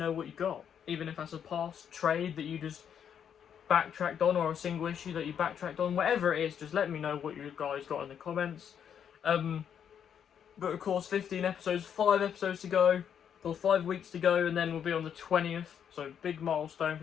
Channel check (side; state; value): right; quieter; 8.4 dB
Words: what you got. Even if that's a past trade that you just backtracked on, or a single issue that you backtracked on, whatever it is, just let me know what you guys got in the comments. But of course, 15 episodes, 5 episodes to go, or 5 weeks to go, and then we'll be on the 20th. So big milestone,